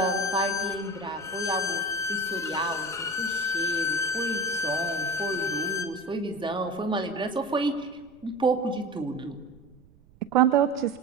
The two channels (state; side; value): noise; right; rumble, 27 dB below the sound